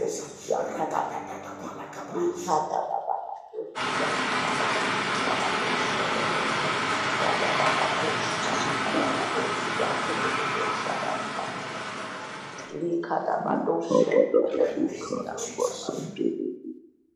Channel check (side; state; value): both; identical; correlation 1.00